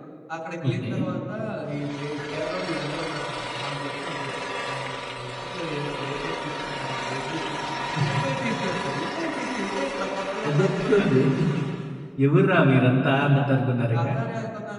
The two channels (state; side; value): identical; both; correlation 1.00